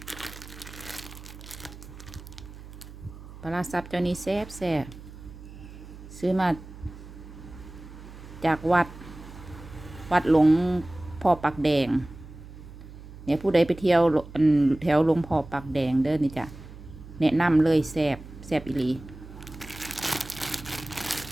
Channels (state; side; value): noise; right; hum, 16 dB below the sound